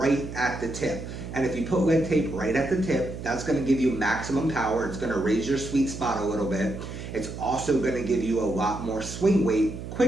at the tip. And if you put lead tape right at the tip, that's going to give you maximum power. It's going to raise your sweet spot a little bit. It's also going to give you a lot more swing weight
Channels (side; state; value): right; noise; hum, 9 dB below the sound